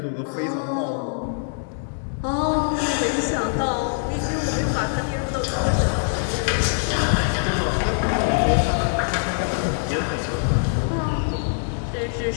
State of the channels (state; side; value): silent; right; digital silence